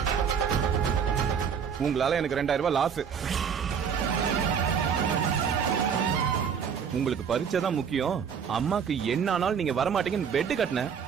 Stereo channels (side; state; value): left; quieter; 7.1 dB